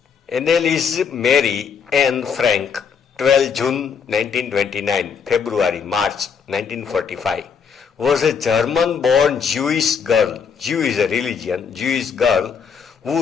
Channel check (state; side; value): quieter; right; 6.5 dB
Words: Anneliese Mary Anne Frank, 12 June 1929, February, March 1945, was a German-born Jewish girl, Jew is a religion, Jewish girl,